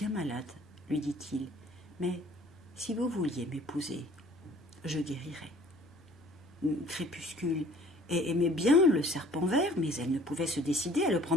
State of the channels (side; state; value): both; normal; correlation 0.53